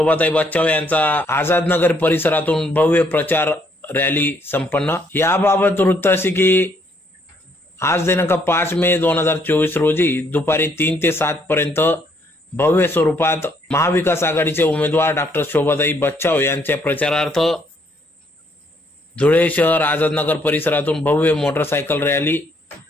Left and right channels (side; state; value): both; normal; correlation 0.69